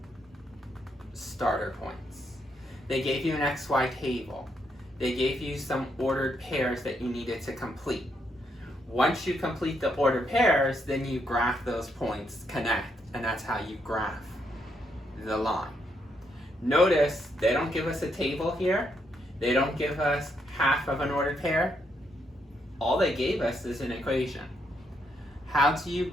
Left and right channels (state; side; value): normal; both; correlation 0.77